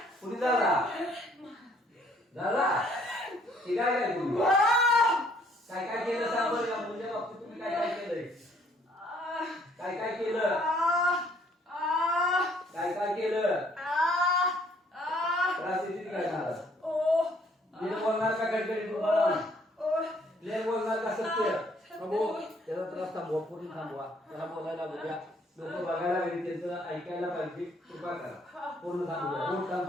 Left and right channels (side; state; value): both; normal; correlation 0.63